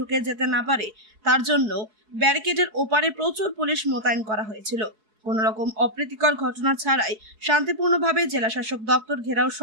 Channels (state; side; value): late; left; 4.7 ms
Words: যেতে না পারে তার জন্য ব্যারিকেডের ওপারে প্রচুর পুলিশ মোতায়েন করা হয়েছিল। কোন রকম অপ্রীতিকর ঘটনা ছাড়াই শান্তিপূর্ণভাবে জেলা শাসক দপ্তর ঘেরাও